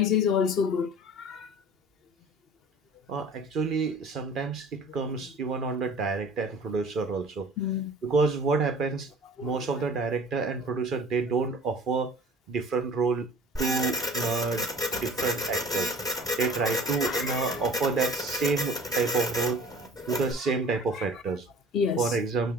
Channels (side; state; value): both; normal; correlation 0.45